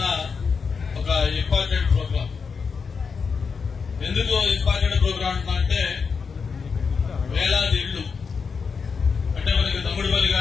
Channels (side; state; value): right; quieter; 5.5 dB